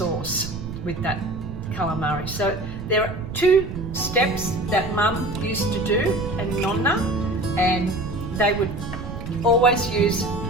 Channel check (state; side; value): noise; right; rumble, 8 dB below the sound